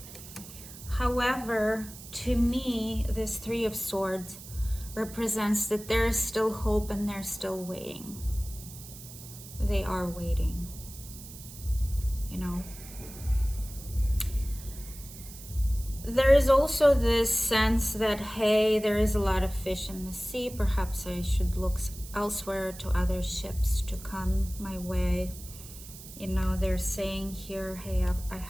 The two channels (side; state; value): right; noise; hiss, 15 dB below the sound